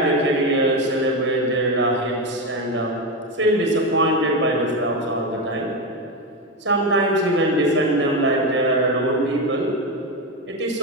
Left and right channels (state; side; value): normal; both; correlation 0.14